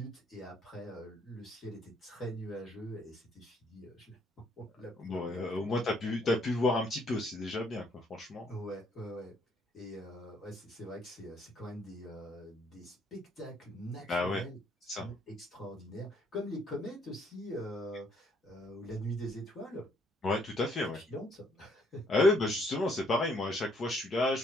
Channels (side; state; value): both; normal; correlation 0.67